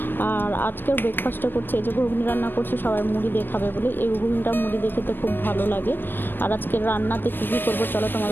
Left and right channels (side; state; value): right; late; 0.095 ms